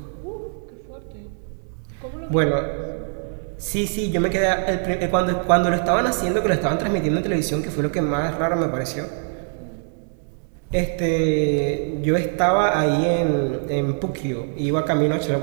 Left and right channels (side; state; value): left; silent; 59 dB below the other